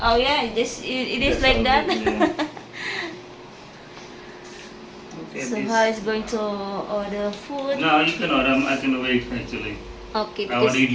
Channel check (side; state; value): both; identical; correlation 1.00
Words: Oh yeah, it is That's like how that. good, yeah. Okay, So this- how is going to order food? No, you can order. I can wait actually. Okay, I want because to eat